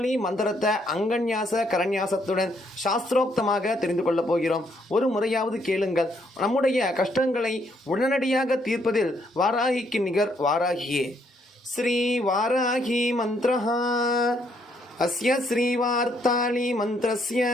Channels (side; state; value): both; normal; correlation 0.71